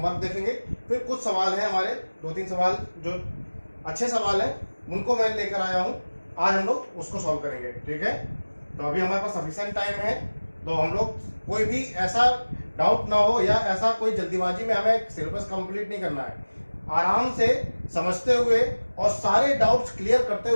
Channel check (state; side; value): inverted; both; correlation -1.00